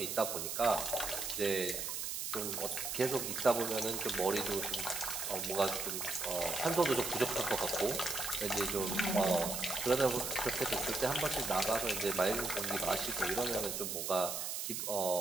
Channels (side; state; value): right; noise; hiss, 3 dB below the sound